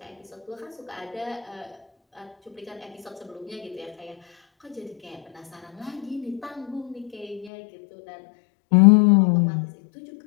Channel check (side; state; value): right; drops out; at 7.5 s